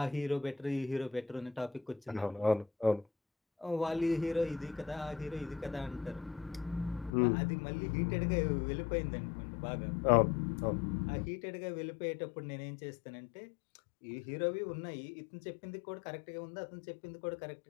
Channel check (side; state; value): right; drops out; at 7.1 s